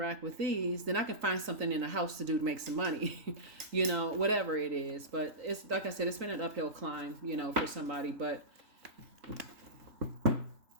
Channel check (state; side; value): late; left; 3.9 ms